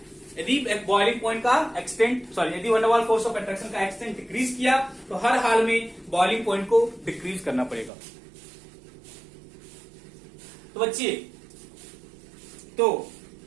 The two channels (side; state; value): left; drops out; at 7.9 s